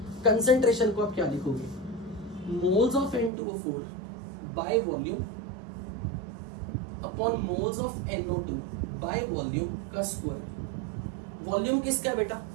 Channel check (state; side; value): drops out; left; at 3.3 s